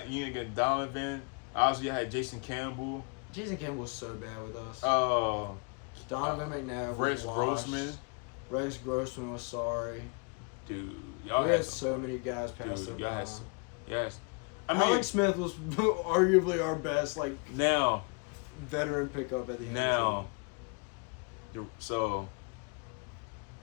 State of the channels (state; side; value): quieter; right; 35.3 dB